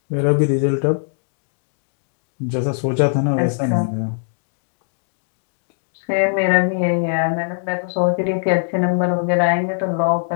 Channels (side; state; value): right; silent; digital silence